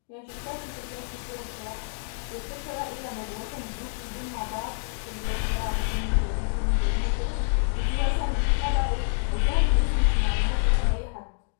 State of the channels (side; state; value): right; silent; digital silence